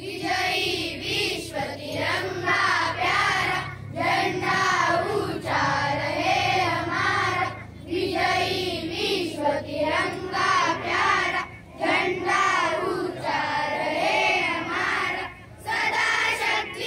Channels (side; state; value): both; identical; correlation 1.00